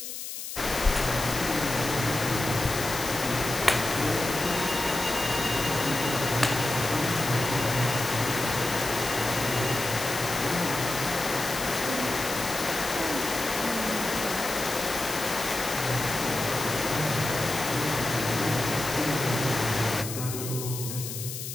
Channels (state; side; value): noise; left; hiss, 7 dB below the sound